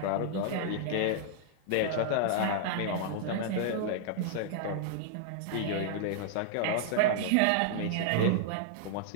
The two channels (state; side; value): different; both; correlation -0.01